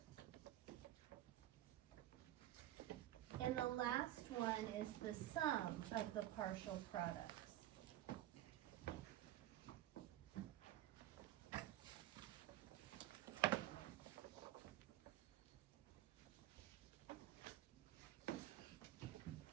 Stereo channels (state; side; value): quieter; left; 13.9 dB